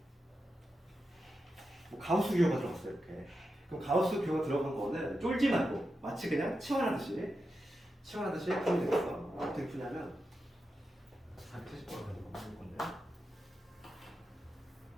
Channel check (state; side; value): normal; both; correlation 0.89